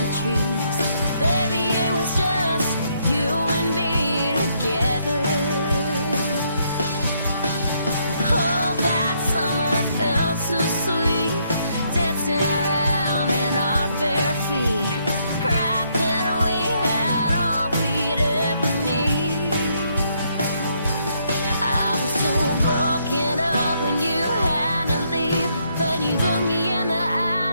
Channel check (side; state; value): both; inverted; correlation -0.73